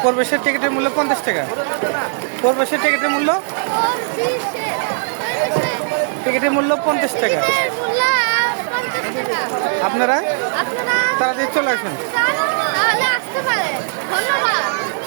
প্রবেশের টিকিটের মূল্য 50 টাকা। প্রবেশের টিকিটের মূল্য 50 টাকা। আপনারা তাড়াতাড়ি চলে আসবেন।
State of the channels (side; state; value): left; silent; digital silence